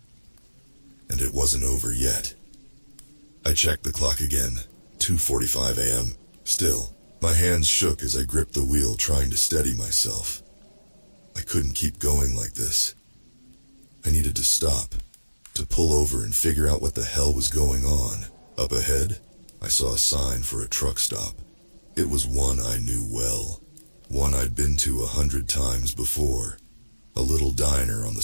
And it wasn't over yet. I checked the clock again, 2:45 a.m. Still, my hands shook as I gripped the wheel trying to steady myself. I couldn't keep going like this. I needed to stop, to pull over and figure out what the hell was going on. Up ahead, I saw a sign for a truck stop. It was one I knew well, one I'd been to 100 times before. A little diner on the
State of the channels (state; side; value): inverted; both; correlation -1.00